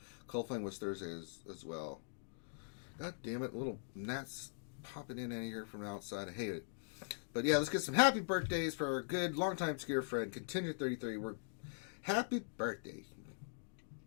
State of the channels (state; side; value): silent; right; digital silence